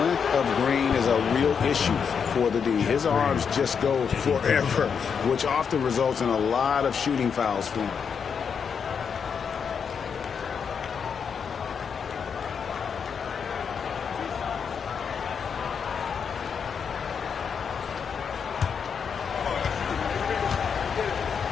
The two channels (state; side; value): quieter; right; 6.6 dB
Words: of Green is a real issue for the D. His arms just go forever, which often results in a lot of shooting fouls for him.